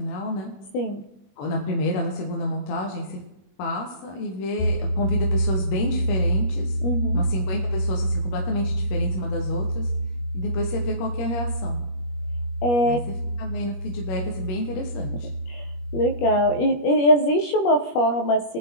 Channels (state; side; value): late; right; 21 ms